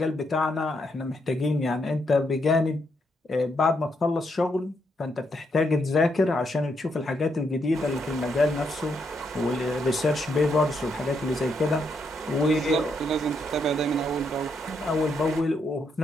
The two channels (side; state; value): both; normal; correlation 0.78